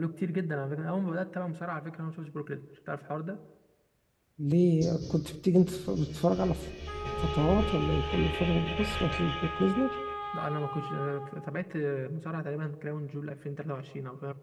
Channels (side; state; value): both; identical; correlation 1.00